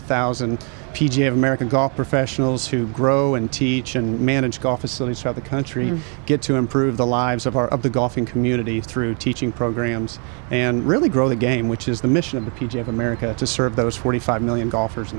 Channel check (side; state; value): left; quieter; 38.0 dB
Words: PGA of America golf professionals who grow and teach and manage golf facilities throughout the country get to improve the lives of the golfing community through teaching programs and really grow the game, which is the mission of the PGA of America, to serve those 45 million golfers in